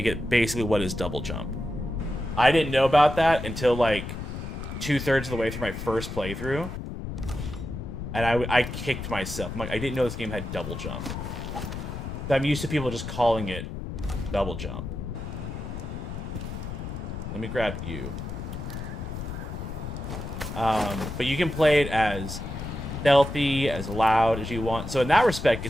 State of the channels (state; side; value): noise; left; rumble, 7 dB below the sound